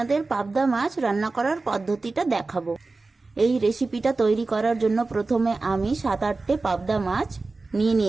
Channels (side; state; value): left; quieter; 3.6 dB